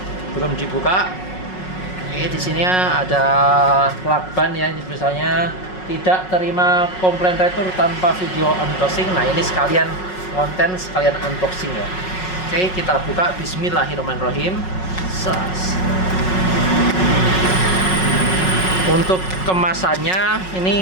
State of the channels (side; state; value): right; late; 5.4 ms